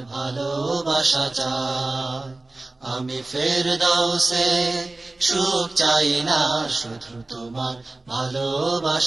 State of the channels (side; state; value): left; quieter; 3.0 dB